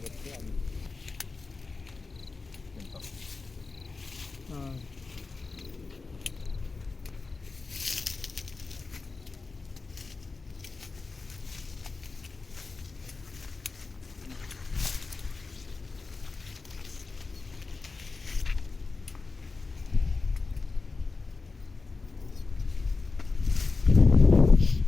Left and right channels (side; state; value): right; quieter; 4.0 dB